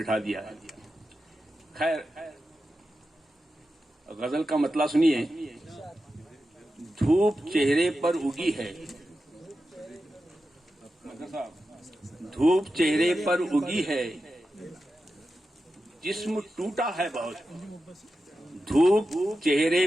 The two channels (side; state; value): both; normal; correlation 0.91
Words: दिया। खैर, गजल का मतला सुनिए। धूप चेहरे पर उगी है, धूप चेहरे पर उगी है, जिस्म टूटा है बहुत। धूप चेहरे